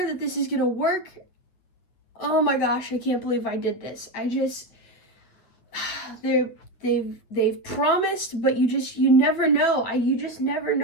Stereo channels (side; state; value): right; late; 9.0 ms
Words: that this is gonna work. Oh my gosh, I can't believe I did this. They're they've promised, but you never know. You just never